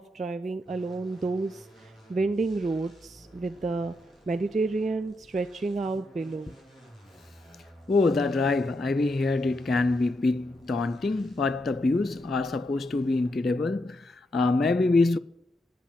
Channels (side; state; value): both; normal; correlation 0.82